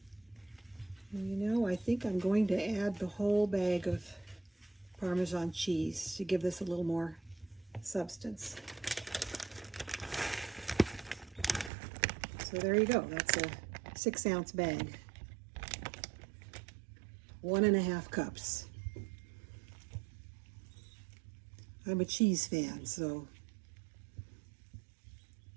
You know, I think I'm going to add the whole bag of Parmesan cheese to give this a little more substance. So there you go. That's a 6-ounce bag. 1.5 cups. I'm a cheese fan, so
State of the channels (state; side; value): drops out; left; at 11.7 s